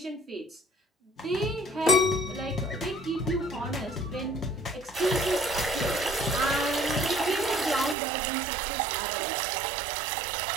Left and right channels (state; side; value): drops out; left; at 8.0 s